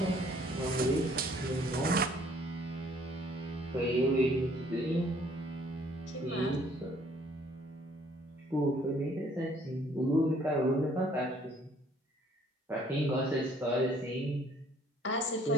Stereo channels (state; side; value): normal; both; correlation 0.60